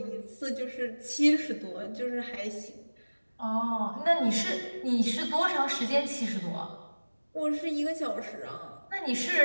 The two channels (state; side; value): inverted; both; correlation -1.00